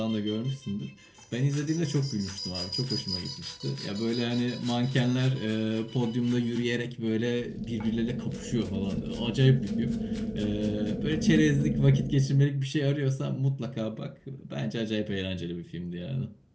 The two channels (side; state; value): both; identical; correlation 1.00